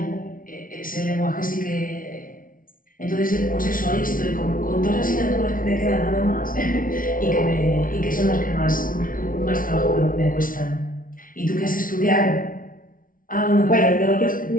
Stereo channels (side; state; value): right; late; 0.40 ms